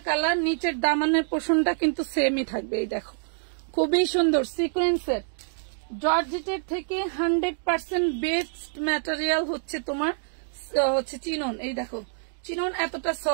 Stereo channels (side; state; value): left; silent; digital silence